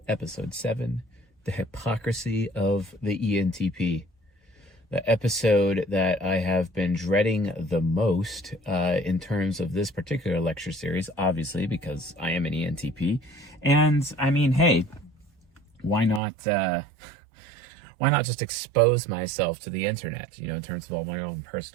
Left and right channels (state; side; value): drops out; left; at 16.2 s